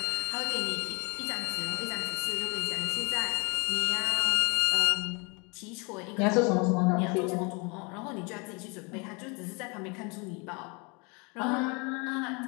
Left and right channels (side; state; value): right; quieter; 31.0 dB